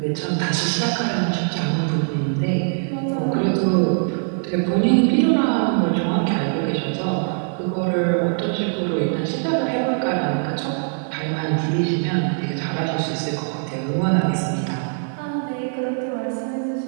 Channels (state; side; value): silent; left; 64 dB below the other